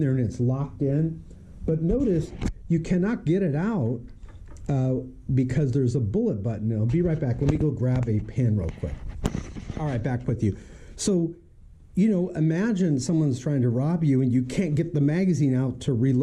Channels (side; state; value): both; identical; correlation 1.00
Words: and it's locked in, but notice you cannot get it out because there's a bullet button. I'll be right back. Let me go grab a pen real quick. All right, back with you. So, imagine someone's trying to rob you and you can't get the magazine out to